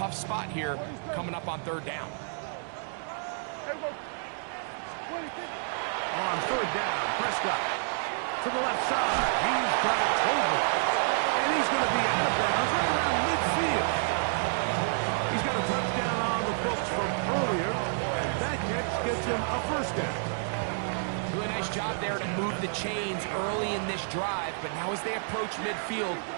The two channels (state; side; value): silent; left; digital silence